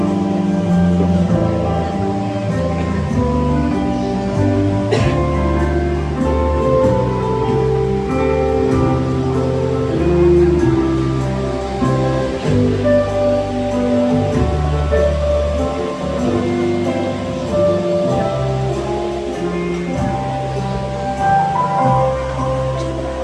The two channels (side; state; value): both; identical; correlation 1.00